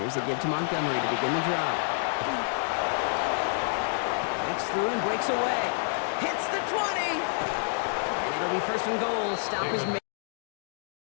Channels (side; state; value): right; silent; digital silence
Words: a give to Montgomery to begin the drive. Breaks through and breaks away. Hits the 20. And it'll be 1st and goal. Stop is made.